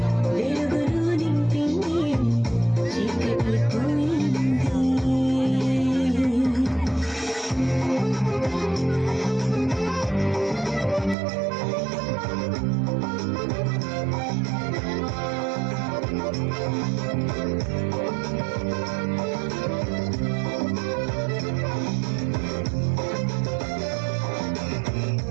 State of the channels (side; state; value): left; drops out; at 11.2 s